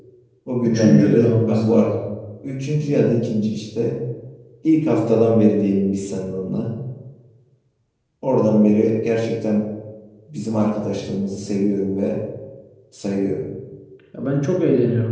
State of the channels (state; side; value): identical; both; correlation 1.00